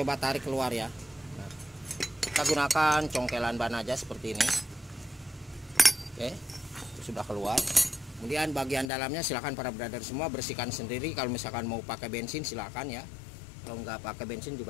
tarik keluar ya. Nah, kita gunakan congkelan ban aja seperti ini. Oke, itu sudah keluar. Kemudian bagian dalamnya silakan para brother semua bersihkan sendiri. Kalau misalkan mau pakai bensin silakan ya. Kalau nggak pakai bensin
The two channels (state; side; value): drops out; right; at 8.8 s